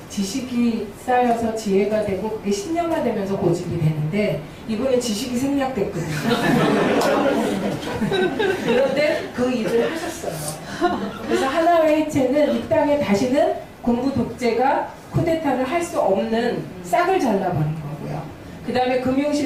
지식이 쌓여서 지혜가 되고 그게 신념화되면서 고집이 되는데, 이분은 지식이 생략됐거든요. 그런데 그 일을 하셨어요. 그래서 하나회 해체는 이 땅에 다시는 군부 독재가 쿠데타를 할 수 없는 싹을 잘라버린 거고요. 그 다음에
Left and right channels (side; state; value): both; identical; correlation 1.00